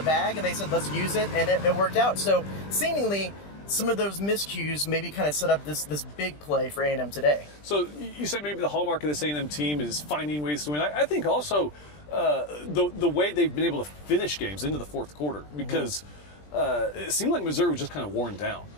bag, and they said, let's use it, and it worked out. So, seemingly, some of those miscues maybe kind of set up this big play for A&M today. So, you said maybe the hallmark of this A&M team is finding ways to win. I think also the way they've been able to finish games into the fourth quarter, because it seemed like Missouri was just kind of worn down.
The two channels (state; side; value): late; right; 20 ms